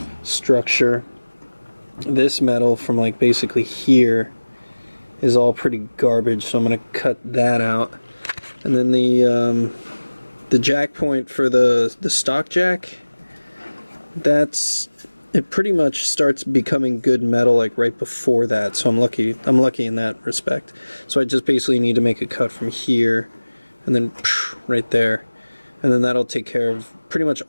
structure. This metal from like basically here is all pretty garbage, so I'm gonna cut that out. And then the jack point for the stock jack, it pretty much starts becoming good metal like right before that, so I'm lucky in that respect. So I just basically need to make a cut from here and then right there, and then that'll take care of pretty much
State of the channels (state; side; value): inverted; both; correlation -1.00